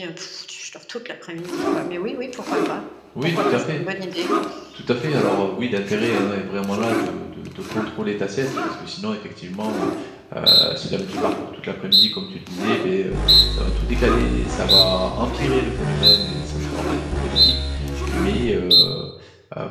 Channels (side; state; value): both; identical; correlation 1.00